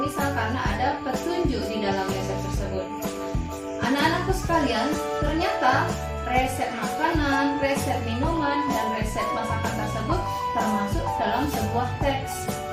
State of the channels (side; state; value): both; identical; correlation 1.00